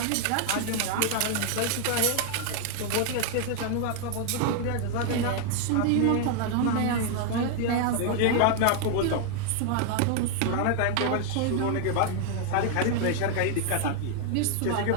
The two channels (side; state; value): both; different; correlation 0.00